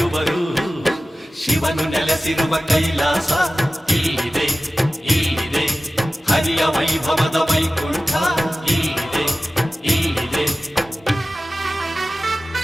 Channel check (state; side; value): normal; both; correlation 0.96